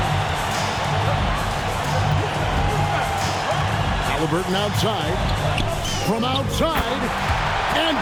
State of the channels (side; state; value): both; identical; correlation 1.00